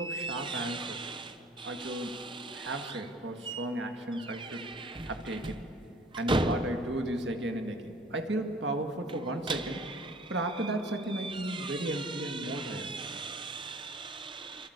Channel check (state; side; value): normal; both; correlation 0.51